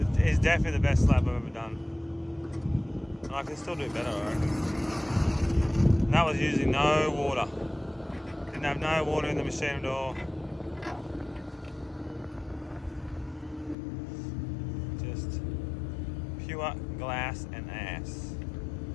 it's definitely the best slab I've ever done. And I can still do better, alright. And that was using no water. Didn't have no water in the machine at all. Just pure glass and ass.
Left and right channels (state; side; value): drops out; right; at 13.8 s